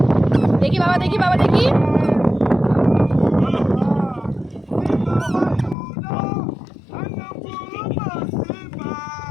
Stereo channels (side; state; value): right; drops out; at 5.8 s